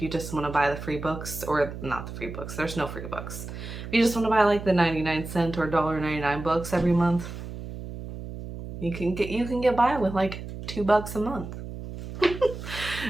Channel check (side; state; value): right; noise; hum, 9 dB below the sound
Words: you just want to buy the free books, or not the free books, there's no free books. If you just want to buy like the 99-cent or $1.99 books every month, you can get by with like $2 a month.